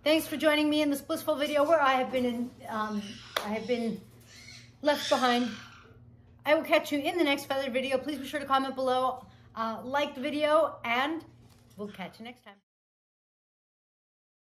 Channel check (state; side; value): identical; both; correlation 1.00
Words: Thanks for joining me in this blissful video where I have been left behind. I will catch you in the next feathered video. Please be sure to comment below, like the video, and we'll catch you next time.